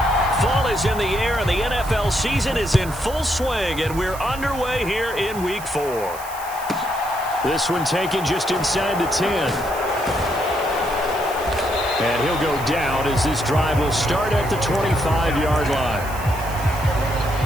In the air, and the NFL season is in full swing, and we're underway here in Week 4. This one taken just inside the 10. And he'll go down as this drive will start at the 25-yard line.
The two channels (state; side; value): noise; right; hiss, 15 dB below the sound